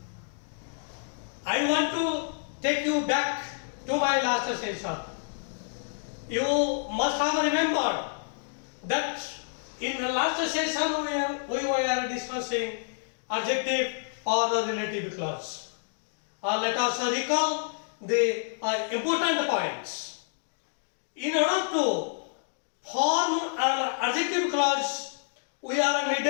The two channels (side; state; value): right; silent; digital silence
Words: I want to take you back to my last session. You must have remembered that in the last session we were discussing adjective or the relative clause. Let us recall the important points. In order to form an adjective clause, we are